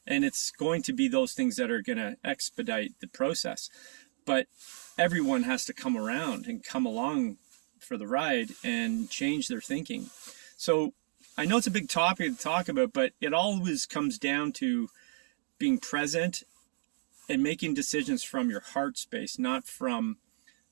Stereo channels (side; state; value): left; silent; digital silence